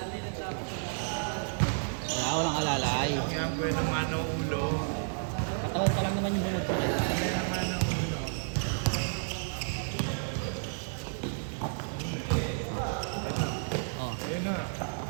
Wala, walang alalay. Kaya ang buwan naman ang ulo. Katawan pa lang naman yung bungod ko. Kaya naman ang ulo. Oh, Ayun na.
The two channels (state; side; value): silent; left; digital silence